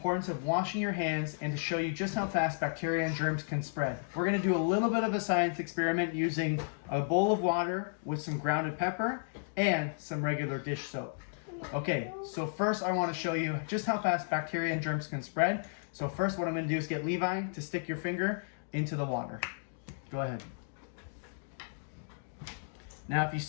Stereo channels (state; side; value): silent; right; digital silence